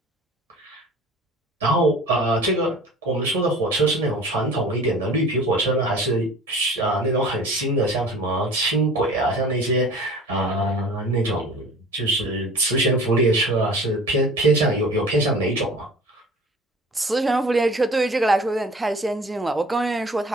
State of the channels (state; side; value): normal; both; correlation 0.43